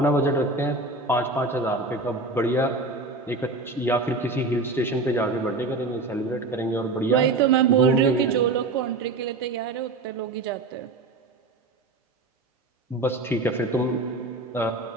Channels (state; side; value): quieter; left; 3.3 dB